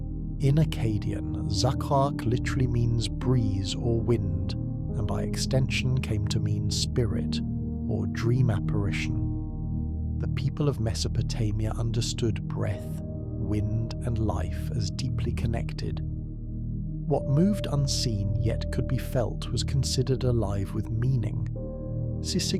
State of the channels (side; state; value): both; identical; correlation 1.00